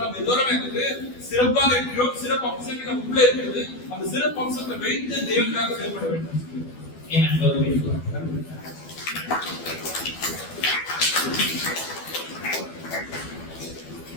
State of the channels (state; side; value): late; right; 12 ms